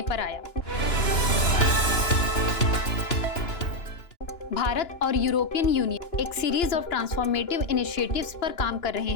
पर आया। भारत और यूरोपियन यूनियन एक सीरीज ऑफ ट्रांसफॉर्मेटिव इनिशिएटिव्स पर काम कर रहे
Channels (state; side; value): late; right; 2.9 ms